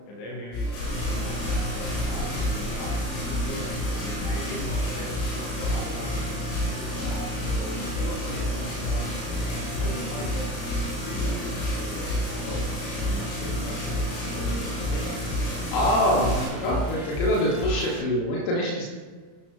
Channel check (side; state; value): right; late; 34 ms